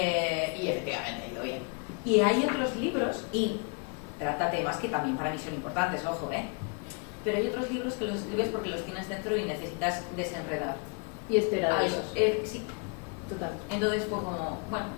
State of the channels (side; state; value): right; quieter; 34.9 dB